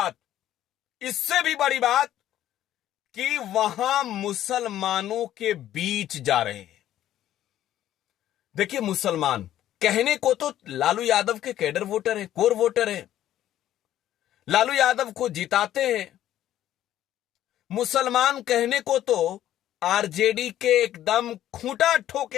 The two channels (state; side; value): quieter; right; 12.4 dB